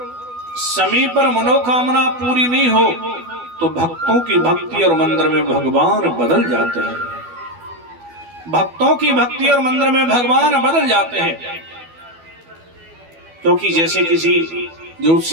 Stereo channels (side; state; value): left; late; 12 ms